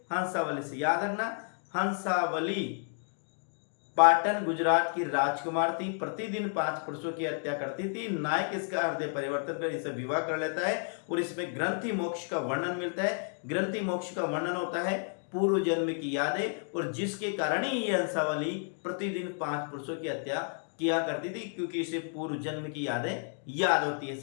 हंसावली से। याद रखना, हंसावली पाटन गुजरात की राजकुमार थी, प्रतिदिन 5 पुरुषों की हत्या करती थी। नायक इसका हृदय परिवर्तन कर इनसे विवाह कर लेता है और इसमें ग्रंथि मोक्ष का वर्णन मिलता है। ग्रंथि मोक्ष का वर्णन होता है पूर्व जन्म की यादें, और जिसके कारण ही ये हंसावली प्रतिदिन 5 पुरुषों की हत्या किया करती थी, क्योंकि इसे पूर्व जन्म की यादें याद होती है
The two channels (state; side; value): silent; right; 56 dB below the other